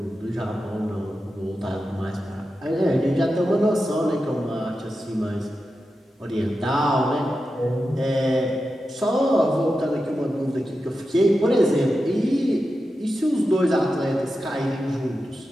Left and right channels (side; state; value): both; normal; correlation 0.90